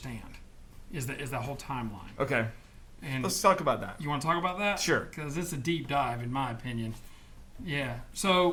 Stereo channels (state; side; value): identical; both; correlation 1.00